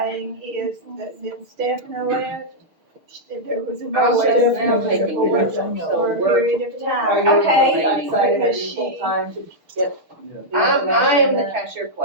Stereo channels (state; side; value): late; left; 6.5 ms